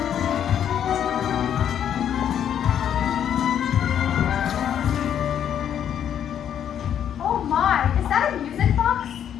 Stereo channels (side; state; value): right; quieter; 9.4 dB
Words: Oh my, is that a music box?